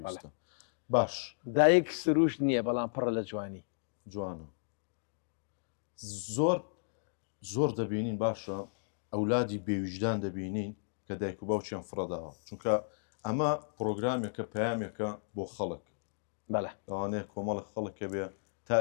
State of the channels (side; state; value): right; silent; digital silence